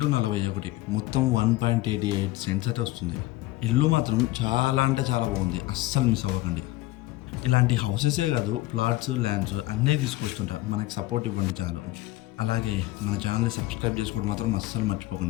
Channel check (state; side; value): quieter; right; 18.2 dB